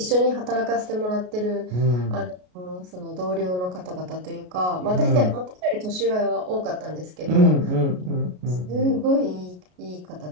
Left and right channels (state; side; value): late; left; 33 ms